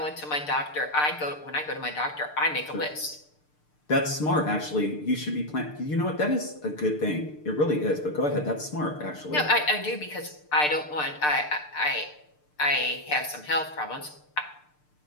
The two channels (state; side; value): late; right; 6.7 ms